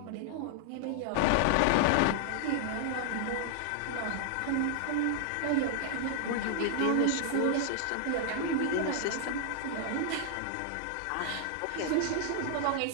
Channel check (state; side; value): different; both; correlation -0.01